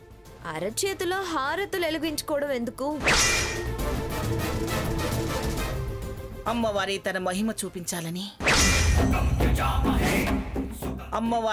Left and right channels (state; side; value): identical; both; correlation 1.00